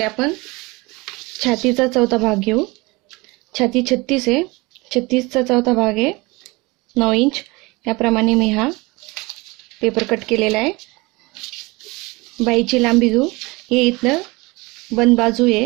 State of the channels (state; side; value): quieter; left; 24.1 dB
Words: आपण छातीचा चौथा भाग घेऊ। छाती 36 आहे, 36 चा चौथा भाग आहे 9 इंच। याप्रमाणे मी हा पेपर कट केलेला आहे। बाहीची लांबी घेऊ। हे इथं बंद बाजू